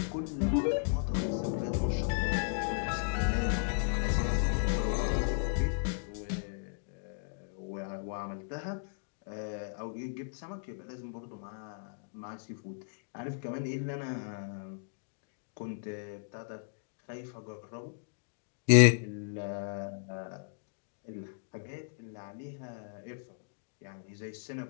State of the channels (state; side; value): silent; right; digital silence